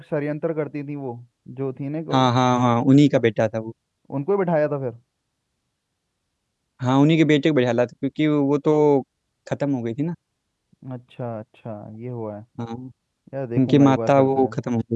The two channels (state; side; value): identical; both; correlation 1.00